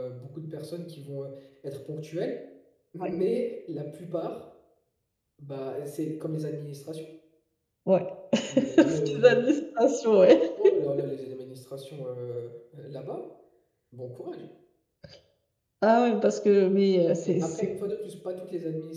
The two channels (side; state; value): both; identical; correlation 1.00